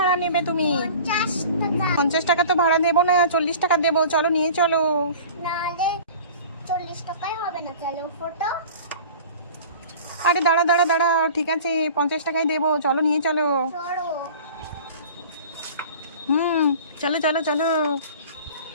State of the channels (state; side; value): inverted; both; correlation -0.42